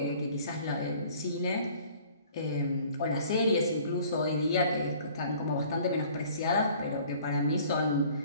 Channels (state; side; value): inverted; both; correlation -0.52